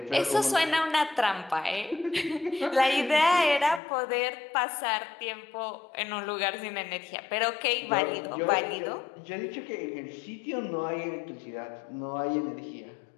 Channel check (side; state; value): right; drops out; at 3.8 s